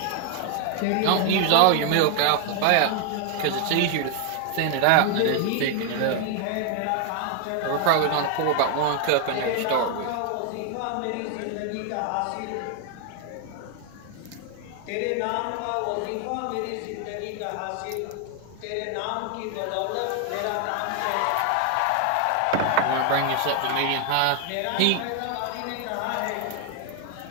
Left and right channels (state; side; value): different; both; correlation 0.00